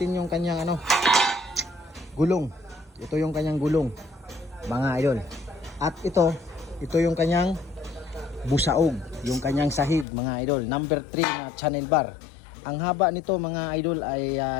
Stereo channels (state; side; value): drops out; right; at 10.1 s